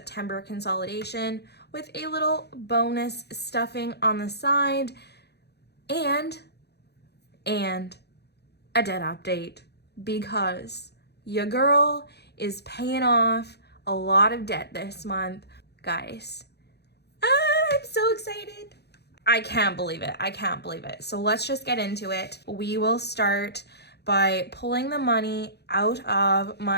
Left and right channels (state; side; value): late; right; 0.48 ms